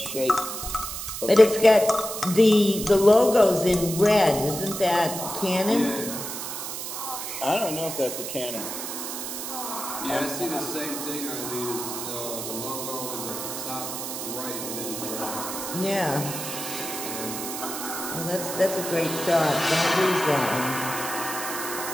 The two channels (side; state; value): right; noise; hiss, 6 dB below the sound